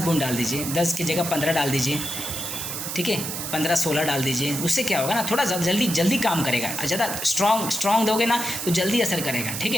डाल दीजिए, 10 की जगह 15 डाल दीजिए, ठीक है, 15-16 डाल दीजिए। उससे क्या होगा ना, थोड़ा जल्दी काम करेगा। ज़्यादा स्ट्रॉन्ग दोगे ना तो जल्दी असर करेगा, ठीक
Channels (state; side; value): noise; right; hiss, 5 dB below the sound